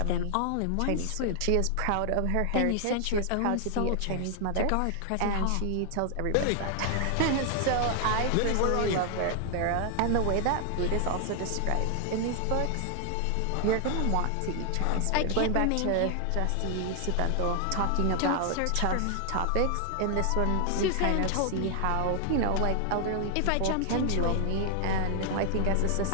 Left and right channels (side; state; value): both; different; correlation 0.00